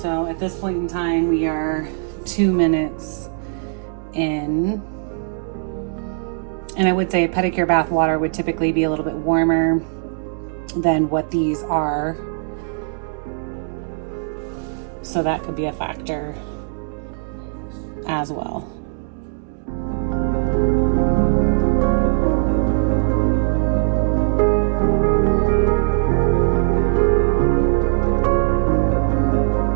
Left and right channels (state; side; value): silent; left; digital silence